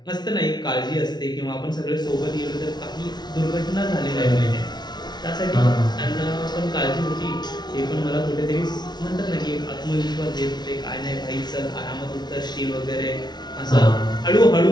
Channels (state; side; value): late; right; 0.20 ms